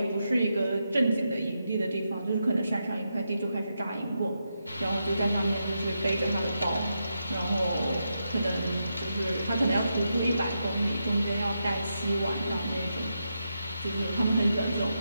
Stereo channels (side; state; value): both; inverted; correlation -0.85